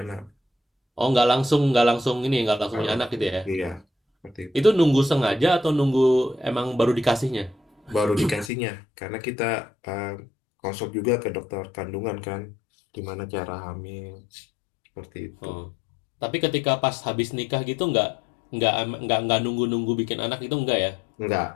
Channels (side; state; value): right; drops out; at 8.5 s